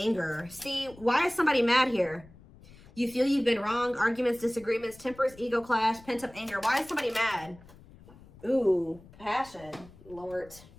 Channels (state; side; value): noise; left; rumble, 22 dB below the sound